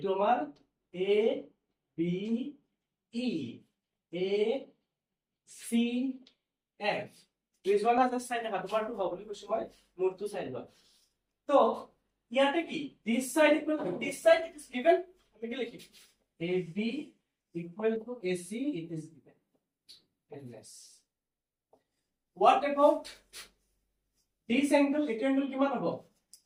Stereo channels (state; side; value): identical; both; correlation 1.00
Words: আমাৰ A B E A C F. this one has a side দেখা তোমাৰটো হ'ব বুলি কৈছো মই, মোৰটো সাইড হয়। তো ইয়াতে কি this side equal to this side, it is given, আমি কি লিখিম AB equal to AC, it is given endless. What about this angle? It angle কিমান হ'ব?